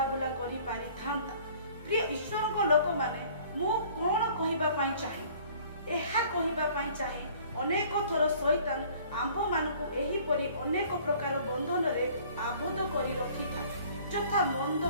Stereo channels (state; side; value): inverted; both; correlation -0.53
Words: करि पारि थांता। प्रिय ईश्वरक लोक माने मु कोन कहिबा पई चाहे, एहा कहिबा पई चाहे अनेक थर शैतान आंभ मानकु एही परि अनेक प्रकार बंधन रे आबद्ध करि रखि थाए, जथा मंद